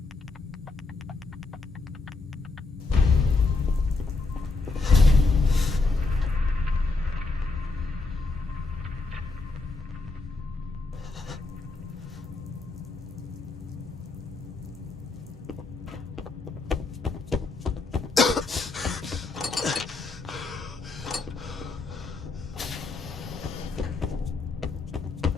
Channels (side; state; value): right; quieter; 3.6 dB